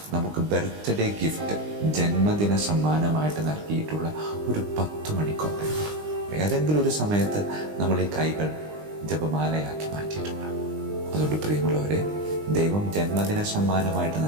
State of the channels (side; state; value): left; late; 20 ms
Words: നമുക്ക് ബർത്ത്ഡേ ഗിഫ്റ്റ്, ജന്മദിന സമ്മാനമായിട്ട് നൽകിയിട്ടുള്ള ഒരു 10 മണിക്കൊന്തയുണ്ട്. ഏതെങ്കിലും ഒരു സമയത്ത് നമ്മൾ ഈ കൈകൾ ജപമാലയാക്കി മാറ്റിയിട്ടുണ്ട്. അതുകൊണ്ട് പ്രിയമുള്ളവരെ, ദൈവം ജന്മദിന സമ്മാനമായിട്ട്